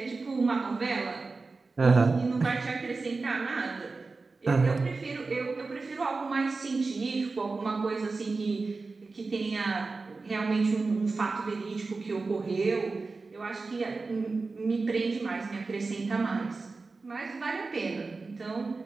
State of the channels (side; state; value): left; quieter; 3.9 dB